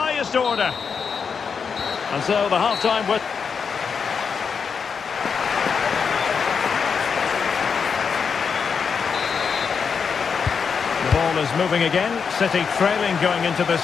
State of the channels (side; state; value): right; quieter; 6.1 dB